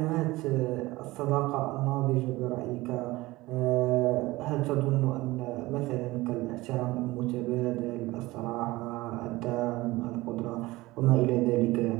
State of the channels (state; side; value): quieter; left; 19.8 dB